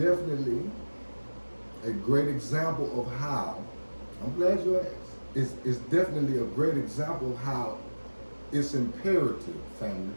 a great example of how, I'm glad you asked, it's definitely a great example of how it's imperative, family,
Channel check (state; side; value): inverted; both; correlation -1.00